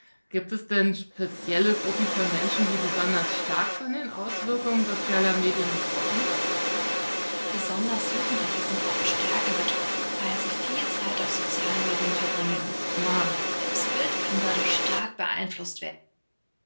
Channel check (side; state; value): both; inverted; correlation -1.00